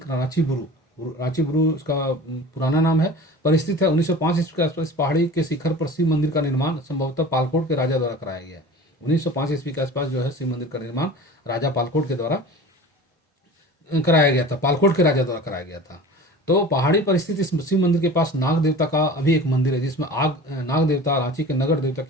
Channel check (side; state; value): both; normal; correlation 0.38